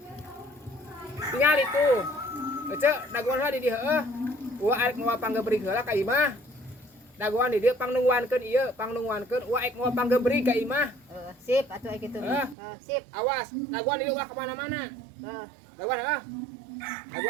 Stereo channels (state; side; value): drops out; left; at 12.6 s